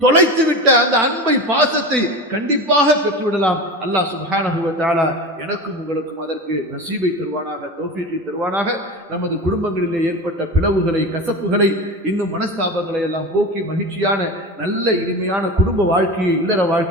அந்த அன்பை, பாசத்தை கண்டிப்பாக பெற்றுவிடலாம். அல்லாஹ் சுப்ஹானஹு வ தஆலா எனக்கும் உங்களுக்கும் அதற்கு நசீபை தருவானாக, தௌஃபீகை தருவானாக. நமது குடும்பங்களிலே ஏற்பட்ட பிளவுகளை, கசப்புகளை, இன்னும் மனஸ்தாபங்களை எல்லாம் போக்கி மகிழ்ச்சியான நல்ல இனிமையான குடும்ப வாழ்க்கையை, இல்லற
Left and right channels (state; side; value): normal; both; correlation 0.27